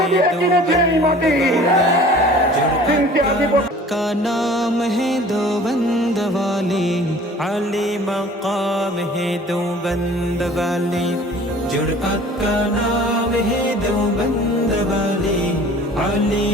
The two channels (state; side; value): normal; both; correlation 0.47